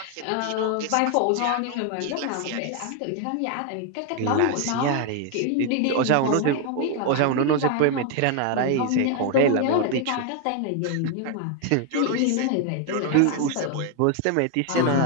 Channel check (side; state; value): both; different; correlation 0.00